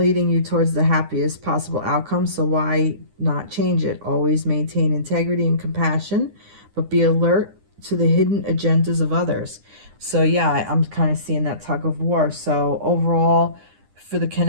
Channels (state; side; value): late; left; 9.8 ms